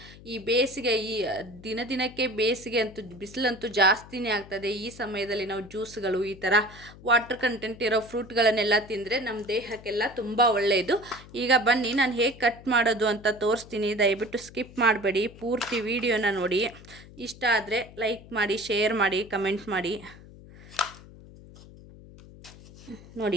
ಈ ಬೇಸಿಗೆ ದಿನಕ್ಕೆ ಬೇಸಿಗೆ ಅಂತೂ ಬಿಸಿಲಂತೂ ಜಾಸ್ತಿನೇ ಆಗ್ತದೆ. ಈ ಸಮಯದಲ್ಲಿ ನಾವು ಜ್ಯೂಸ್ಗಳು ಈ ಥರ ವಾಟರ್ ಕಂಟೆಂಟ್ ಇರೋ ಫ್ರೂಟ್ಗಳನ್ನೆಲ್ಲ ತಿಂದರೆ ನಮ್ಮ ದೇಹಕ್ಕೆಲ್ಲ ತುಂಬ ಒಳ್ಳೆಯದು. ಈಗ ಬನ್ನಿ ನಾನು ಹೇಗೆ ಕಟ್ ಮಾಡೋದು ಅಂತ ತೋರಿಸ್ತೀನಿ. ದಯವಿಟ್ಟು ಸ್ಕಿಪ್ ಮಾಡಬೇಡಿ, ಪೂರ್ತಿ ವಿಡಿಯೋನ ನೋಡಿ. ಇಷ್ಟ ಆದರೆ ಲೈಕ್ ಮಾಡಿ, ಶೇರ್ ಮಾಡಿ, ಕಮೆಂಟ್ ಮಾಡಿ.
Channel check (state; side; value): noise; left; hum, 19 dB below the sound